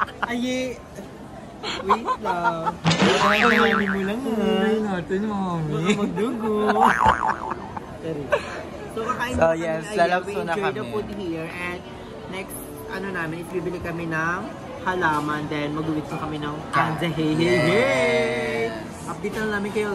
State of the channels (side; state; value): both; identical; correlation 1.00